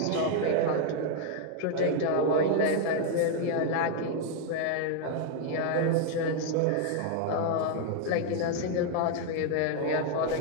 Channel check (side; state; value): both; different; correlation 0.00